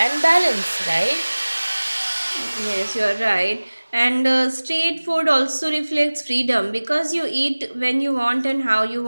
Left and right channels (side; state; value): both; inverted; correlation -1.00